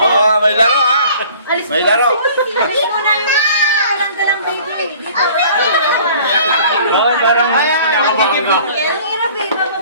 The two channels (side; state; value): both; inverted; correlation -0.50